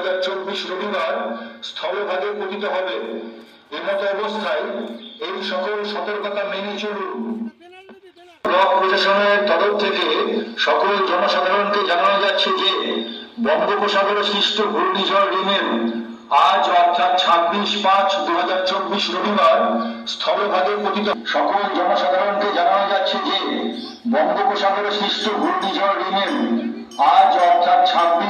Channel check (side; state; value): both; identical; correlation 1.00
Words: রবিবার স্থলভাগে পতিত হবে। এমতো অবস্থায় এই সকল সতর্কতা মেনে চলুন। ব্লক প্রশাসনের তরফ থেকে সকল জনসাধারণকে জানানো যাচ্ছে যে বঙ্গোপসাগরে সৃষ্ট ঘূর্ণিঝড় রিমেল আজ অর্থাৎ 26/5/2024 রবিবার স্থলভাগে পতিত। সকল জনসাধারণকে জানানো যাচ্ছে যে বঙ্গোপসাগরে সৃষ্ট ঘূর্ণিঝড় রিমেল আজ অর্থাৎ